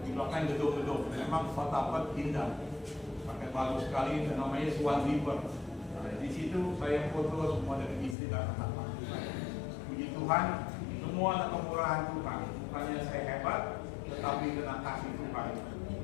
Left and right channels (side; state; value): right; drops out; at 8.2 s